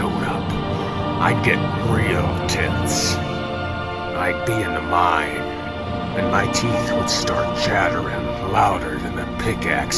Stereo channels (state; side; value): identical; both; correlation 1.00